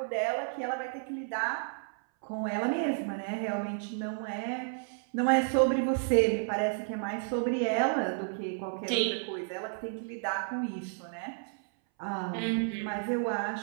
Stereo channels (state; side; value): silent; left; 57 dB below the other